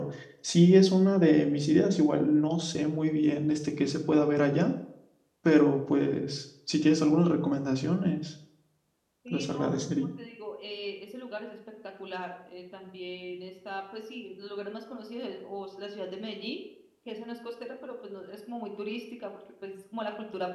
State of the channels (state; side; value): identical; both; correlation 1.00